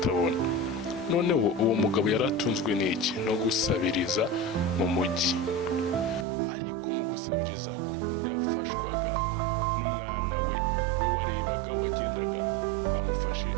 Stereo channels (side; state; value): left; drops out; at 6.2 s